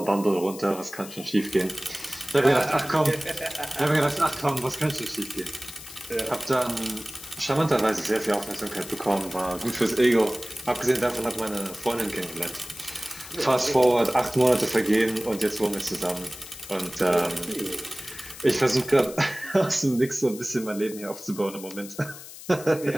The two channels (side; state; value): left; noise; hiss, 15 dB below the sound